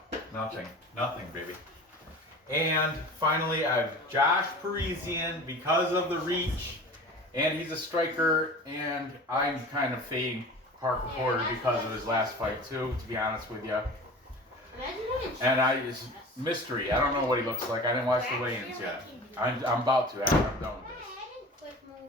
Nothing, baby. And finally, I have Josh Parisian because of the reach, and he's a striker, and I'm kind of fading Parker Porter because of his last fight too, to be honest with you. And it's mystery. I don't know what he looks like. I didn't watch the weigh-ins yet. I'm about to after I'm done with this.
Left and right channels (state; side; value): normal; both; correlation 0.38